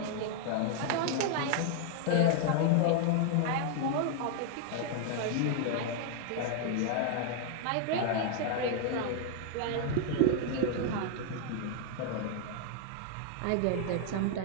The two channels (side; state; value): both; different; correlation 0.00